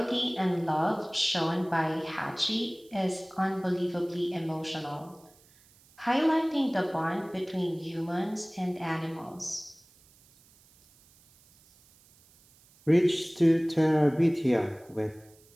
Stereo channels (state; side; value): noise; right; hiss, 29 dB below the sound